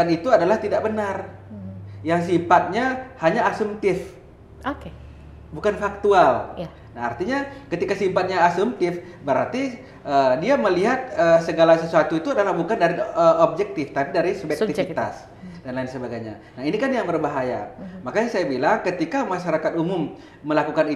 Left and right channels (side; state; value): both; identical; correlation 1.00